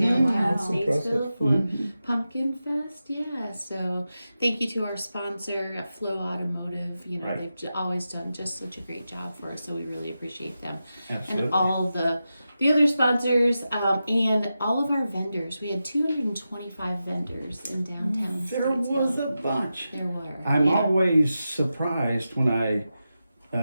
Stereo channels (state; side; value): inverted; both; correlation -0.91